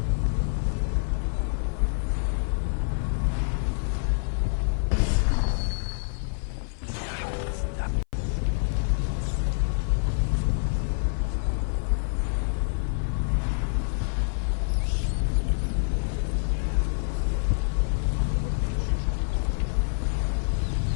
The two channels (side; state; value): right; silent; 56 dB below the other